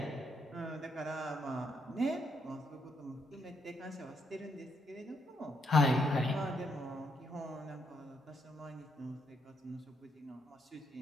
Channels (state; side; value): normal; both; correlation 0.76